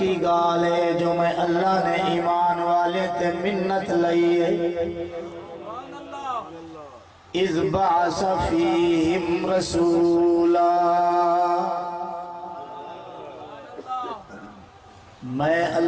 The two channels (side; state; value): both; identical; correlation 1.00